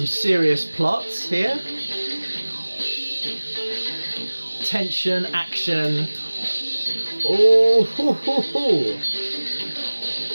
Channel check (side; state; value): both; inverted; correlation -1.00